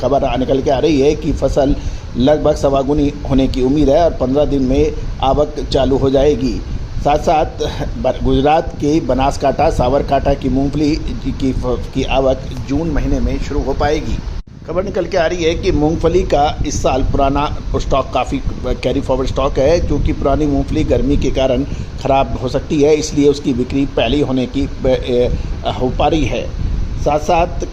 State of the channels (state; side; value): identical; both; correlation 1.00